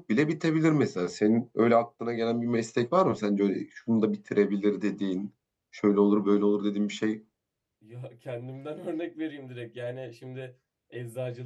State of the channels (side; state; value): both; identical; correlation 1.00